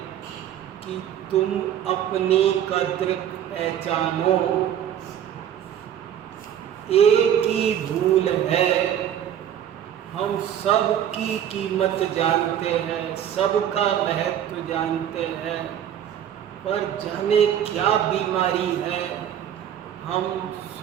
कि तुम अपनी कद्र पहचानो। एक ही धूल है, हम सब की कीमत जानते हैं, सबका महत्व जानते हैं, पर जाने क्या बीमारी है हम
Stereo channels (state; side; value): quieter; left; 10.1 dB